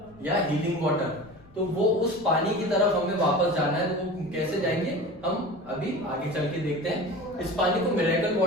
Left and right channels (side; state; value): left; noise; rumble, 25 dB below the sound